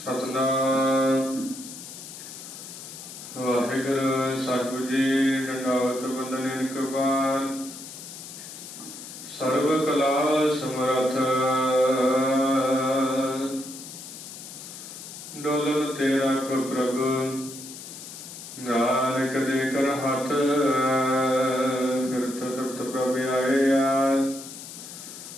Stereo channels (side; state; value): left; noise; hiss, 13 dB below the sound